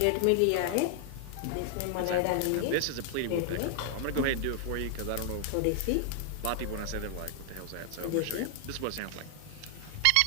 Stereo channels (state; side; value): different; both; correlation 0.00